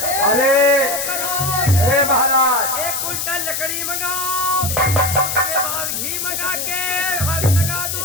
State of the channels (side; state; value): left; noise; hiss, 2 dB below the sound